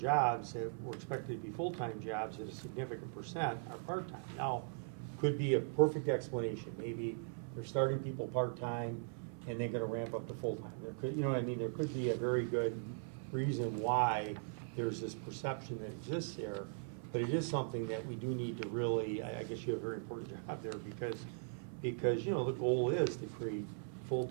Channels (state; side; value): silent; left; 51 dB below the other